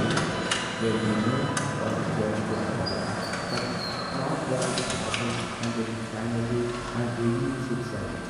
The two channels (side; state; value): both; identical; correlation 1.00